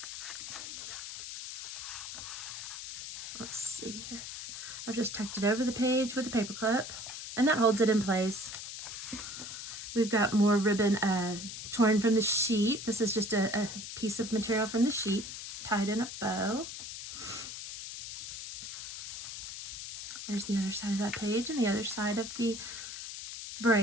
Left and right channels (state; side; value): noise; left; hiss, 8 dB below the sound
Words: Let's see here. I've just tucked it over the page with a paper clip, and that holds it in place. We've got more ribbon torn from the sheet. This is just a piece of material from the sheet tied in a bow. There's the other side of that page and the other side of the